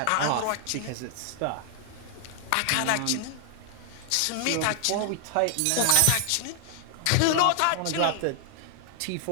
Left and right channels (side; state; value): both; different; correlation 0.00